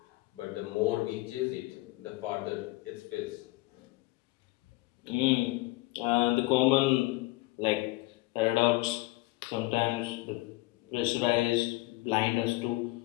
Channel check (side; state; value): right; quieter; 21.3 dB